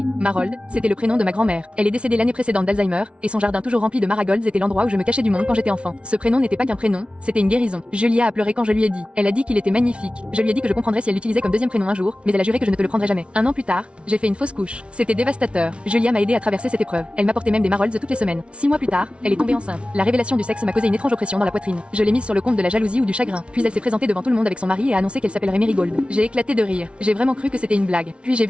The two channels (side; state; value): left; late; 0.059 ms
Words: Marold, c'était le prénom de ma grand-mère. Elle est décédée l'année précédente d'Alzheimer, et son jardin toujours rempli de marigolds était l'endroit où je me cachais du monde quand j'étais enfant. Ce prénom n'était pas qu'un prénom, c'était une guérison. Julia a pleuré quand je lui ai dit. Elle a dit qu'il était magnifique. Je lui ai dit que je comprendrais si elle l'utilisait comme deuxième prénom un jour, mais elle a juré que je ne te le prendrais jamais. Un an plus tard, j'ai fait une fausse couche. C'était dévastateur. Julia m'a aidé à traverser cette épreuve. Elle m'apportait même des marolds toutes les semaines. 6 mois plus tard, elle est tombée enceinte. La révélation du sexe m'a causé une étrange oppression dans la poitrine. Je l'ai mise sur le compte de la jalousie ou du chagrin. Puis elle s'est présentée devant tout le monde avec son mari et a annoncé qu'elle s'appellerait Marigold. J'ai éclaté de rire. J'ai vraiment cru que c'était une blague. Puis j'ai